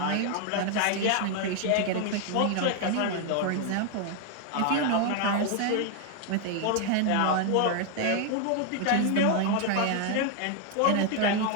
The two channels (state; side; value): different; both; correlation 0.00